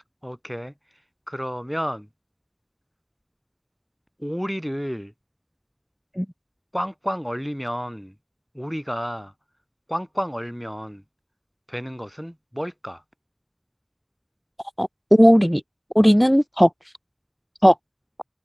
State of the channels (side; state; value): both; identical; correlation 1.00